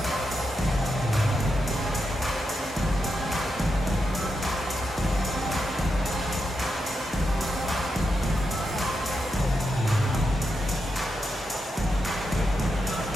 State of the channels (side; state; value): both; normal; correlation 0.85